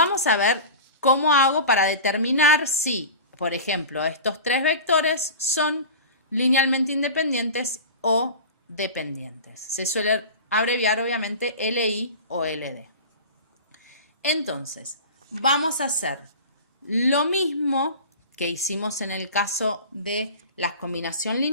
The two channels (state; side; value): inverted; both; correlation -0.33